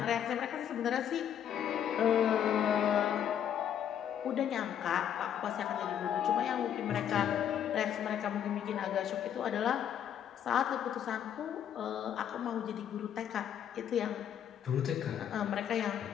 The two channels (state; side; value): quieter; right; 9.4 dB